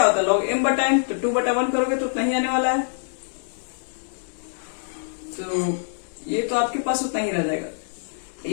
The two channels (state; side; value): silent; right; digital silence